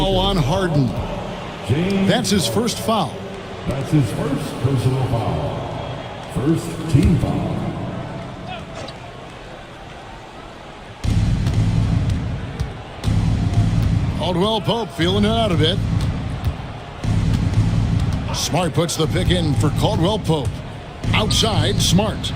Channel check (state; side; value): identical; both; correlation 1.00